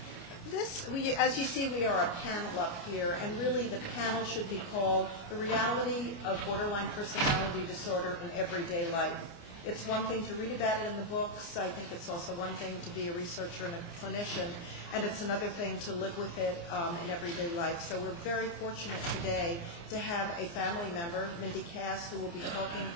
As you see, we are a panel up here, and really the panel should be called The Reality of Borderline Personality Disorder in Everyday Life. It's one thing to read about it in the books. I think it's also one thing to be a researcher and a clinician, and it's another thing to live with it in everyday life. So we're very fortunate today to have a family member, Mindy Cass, who will be talking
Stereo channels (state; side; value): late; right; 29 ms